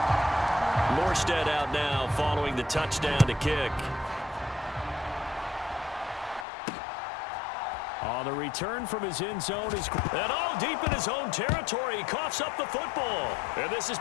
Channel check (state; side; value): drops out; right; at 6.5 s